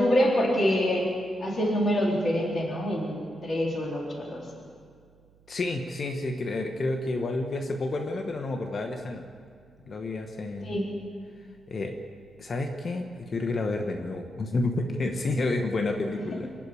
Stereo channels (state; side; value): noise; right; hum, 29 dB below the sound